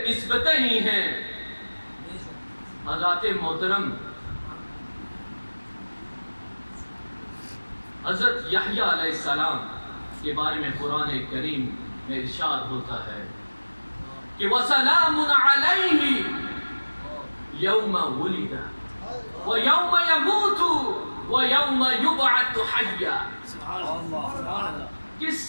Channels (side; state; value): both; inverted; correlation -1.00